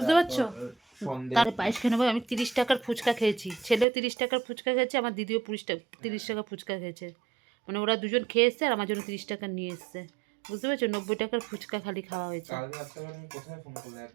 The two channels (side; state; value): left; drops out; at 3.9 s